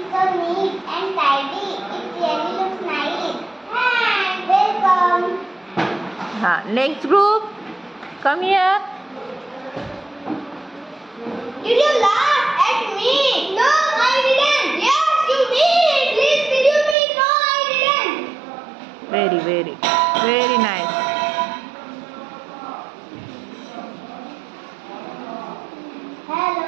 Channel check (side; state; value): left; drops out; at 16.9 s